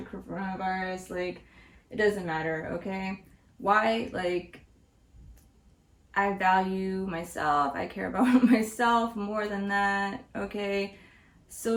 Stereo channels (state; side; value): identical; both; correlation 1.00